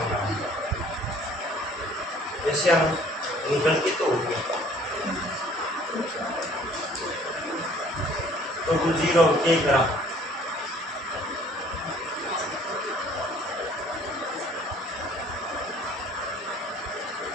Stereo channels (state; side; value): normal; both; correlation 0.55